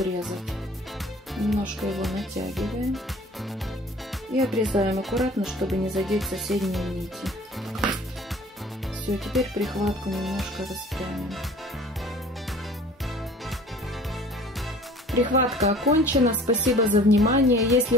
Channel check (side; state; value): both; normal; correlation 0.48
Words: Немножко его натягиваем. И обрезаем аккуратно, чтобы не задеть соседние нити. Все, теперь прихватку немножко распрямим. Прихватка окончена. Спасибо за внимание. Если